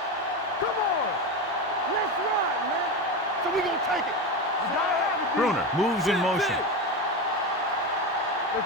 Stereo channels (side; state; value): both; normal; correlation 0.19